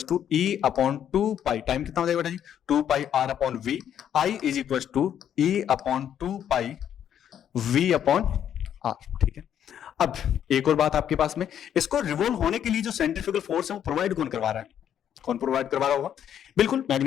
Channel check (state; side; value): quieter; right; 9.6 dB